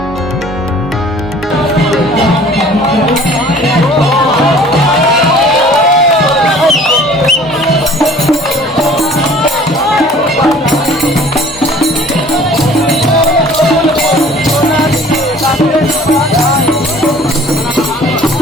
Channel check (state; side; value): normal; both; correlation 0.50